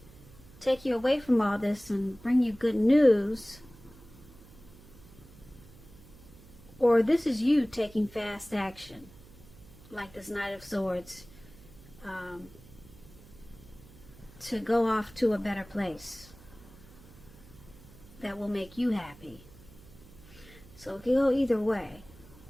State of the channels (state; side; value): noise; right; hum, 21 dB below the sound